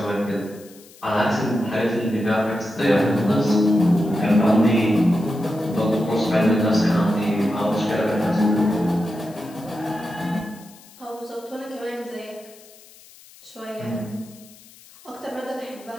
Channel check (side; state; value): left; noise; hiss, 23 dB below the sound